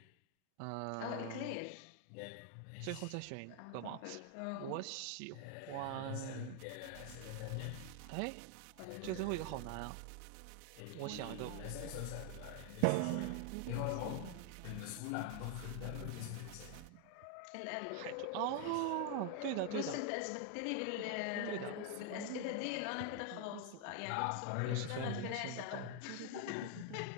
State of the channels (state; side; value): different; both; correlation 0.00